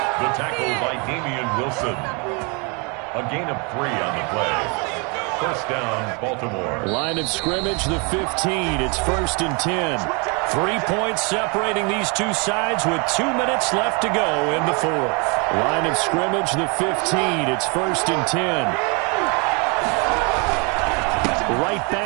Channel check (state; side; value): quieter; left; 32.4 dB